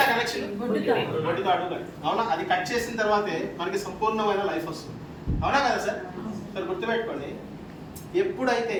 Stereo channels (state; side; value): identical; both; correlation 1.00